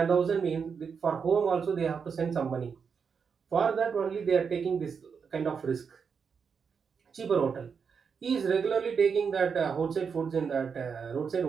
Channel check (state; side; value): quieter; left; 6.1 dB